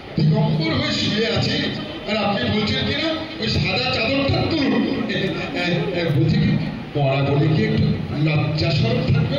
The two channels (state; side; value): identical; both; correlation 1.00